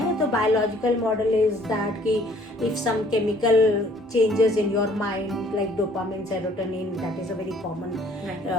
तो biological model is that कि if some chemical changes in your mind like dopamine, serotonin, that is a very common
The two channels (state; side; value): normal; both; correlation 0.58